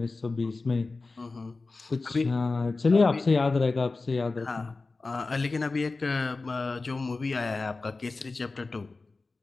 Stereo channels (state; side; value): quieter; right; 3.7 dB